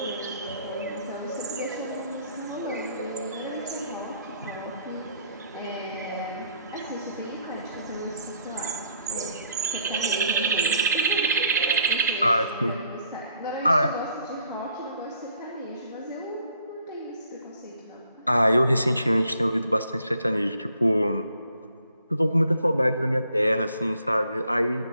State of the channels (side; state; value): both; inverted; correlation -0.67